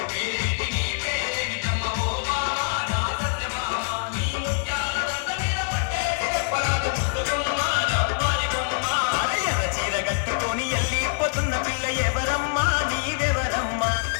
పేరేంటి నీ పేరేమిటమ్మ ఓ బామా నా సత్యభామ నీ ముత్యాల దండ మీద కొట్టేసి చెప్పరాది ముద్దు గుమ్మ రగారి బొమ్మ ఎర్ర చీర కట్టుకొని ఎల్లిపోతున్న పిల్ల ఎవరమ్మా నీవెవరమ్మా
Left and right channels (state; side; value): silent; right; digital silence